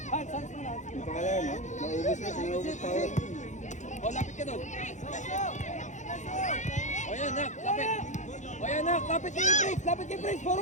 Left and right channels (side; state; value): right; late; 0.35 ms